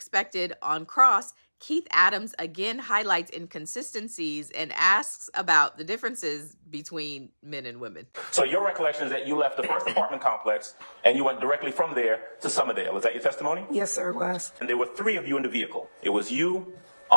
on cross, Keith Adams again highlights inconsistencies and asks about the differences between men and women. So your recollection is that you left the first apartment complex and you went directly from there to Summerdale. Is that your testimony? Yes, sir, it was. And there were 3 of you in the vehicle. It was you,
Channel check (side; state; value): both; inverted; correlation -1.00